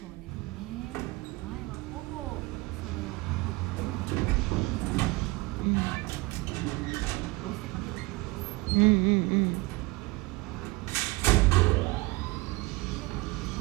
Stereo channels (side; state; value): left; quieter; 23.5 dB